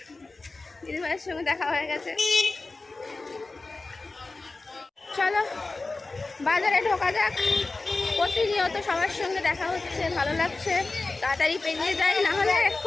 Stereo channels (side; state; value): right; quieter; 3.5 dB